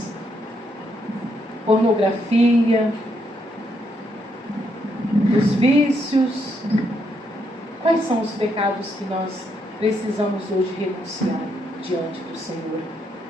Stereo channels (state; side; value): normal; both; correlation 0.76